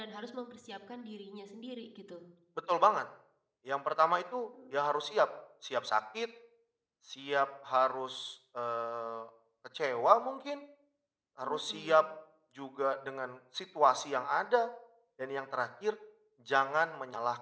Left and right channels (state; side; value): identical; both; correlation 1.00